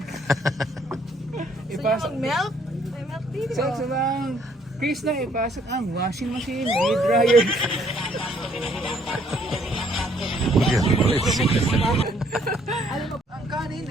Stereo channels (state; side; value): normal; both; correlation 0.65